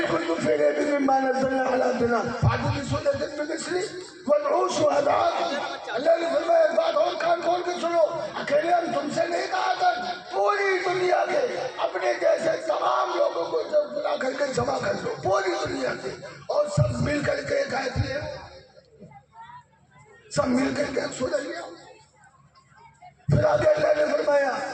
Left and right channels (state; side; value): identical; both; correlation 1.00